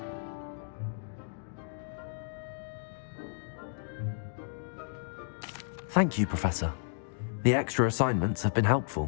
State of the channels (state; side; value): silent; right; digital silence